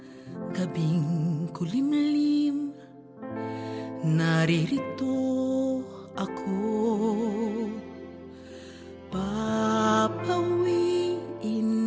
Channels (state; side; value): identical; both; correlation 1.00